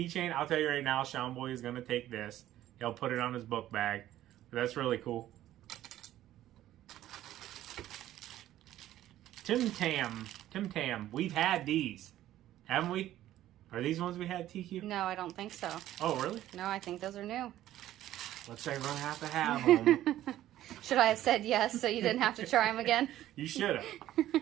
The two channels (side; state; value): left; quieter; 13.4 dB